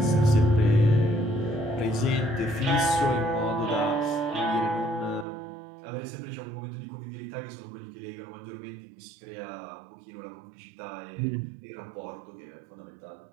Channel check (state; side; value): drops out; left; at 5.2 s